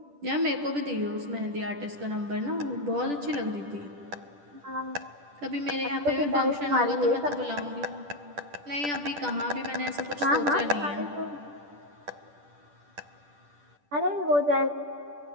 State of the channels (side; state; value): left; late; 10 ms